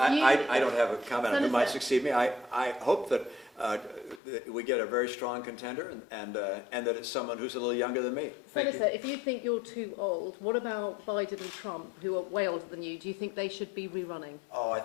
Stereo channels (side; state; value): right; drops out; at 4.2 s